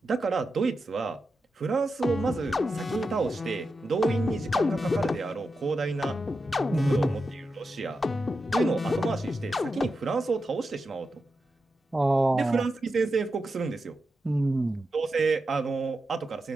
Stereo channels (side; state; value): both; normal; correlation 0.89